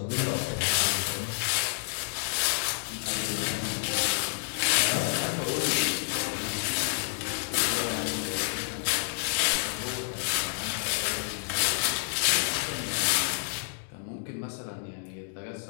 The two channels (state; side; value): silent; right; digital silence